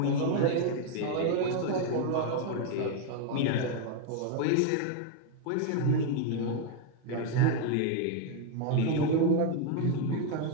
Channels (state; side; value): different; both; correlation 0.01